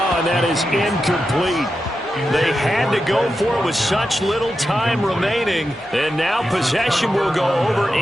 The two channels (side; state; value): both; normal; correlation 0.89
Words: and that is incomplete. They had to go for it with such little time remaining. And now possession will go over